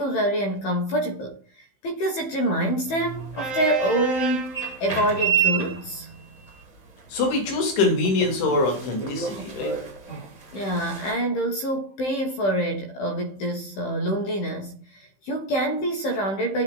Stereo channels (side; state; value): right; late; 15 ms